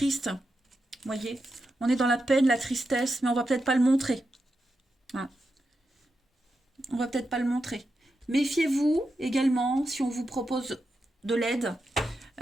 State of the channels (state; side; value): normal; both; correlation 0.87